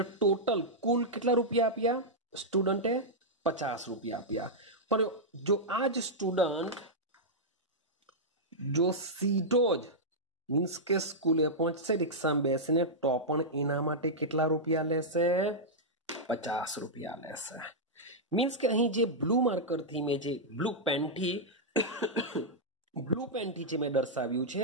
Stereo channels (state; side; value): normal; both; correlation -0.08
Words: ટોટલ કુલ કેટલા રૂપિયા આપ્યા? સ્ટુડન્ટે 50 રૂપિયા આપ્યા. પણ જો આ જ સ્ટુડન્ટ જો સીધો જ મીન્સ કે સ્કૂલે પહોંચશે રિક્ષામાં બેસીને, તો પણ એના માટે કેટલા રૂપિયા લેશે? 50 રૂપિયા લેશે. મીન્સ કે અહીં જે બ્લુ માર્કરથી મેં જે બ્લુ પેનથી જે મેં દર્શાવ્યું